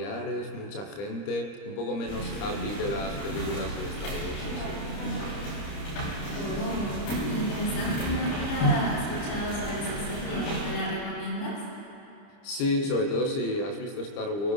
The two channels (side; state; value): right; late; 30 ms